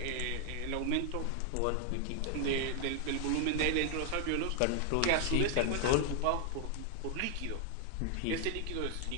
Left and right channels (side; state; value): both; different; correlation 0.00